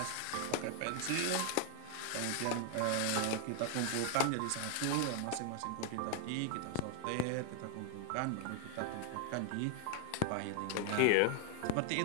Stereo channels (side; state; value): both; different; correlation 0.00